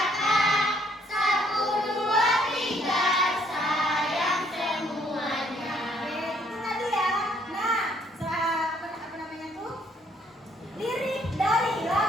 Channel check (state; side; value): normal; both; correlation 0.66